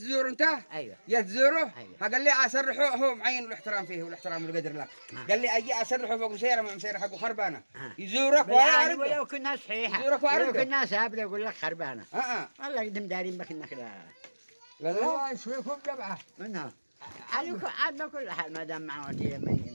انت. ايوه جيت تزوره. أيوة. قال لي اسرحه هو معين الاحترام فيه والاحترام والقدر لك. قال لي اجي اسرحه فوق مسيره مع مسيره حقه خربانه. يزورك ولا بالعكس يعرف. ولو كنا صحيحة يزورك ولو وعرفه. كنا سابلة يقول لك خربانة اه والله قدم دارين بك انك لا لا لا يسويكم جبعه. منها عاد بكل حال ما دام معه وديه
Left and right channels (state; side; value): inverted; both; correlation -1.00